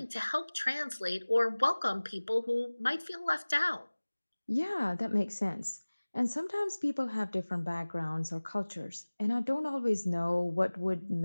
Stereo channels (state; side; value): inverted; both; correlation -1.00